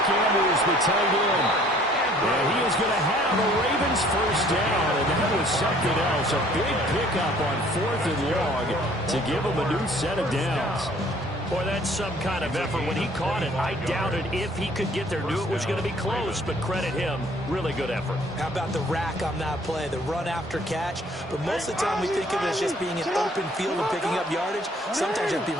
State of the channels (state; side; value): normal; both; correlation 0.57